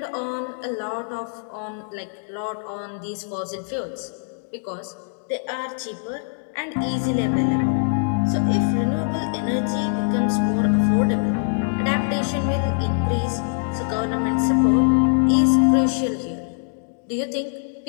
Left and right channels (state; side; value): silent; right; 63 dB below the other